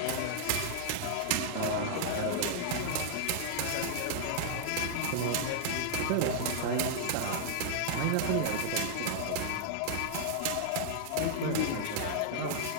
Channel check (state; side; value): different; both; correlation -0.01